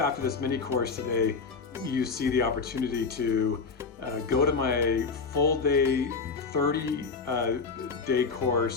this mini course today, you see the opportunity to go to my full day, 30-day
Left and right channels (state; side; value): quieter; right; 4.9 dB